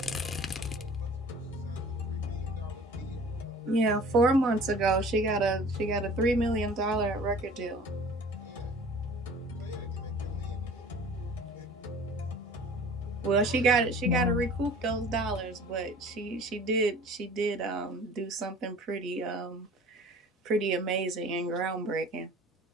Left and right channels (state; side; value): normal; both; correlation 0.45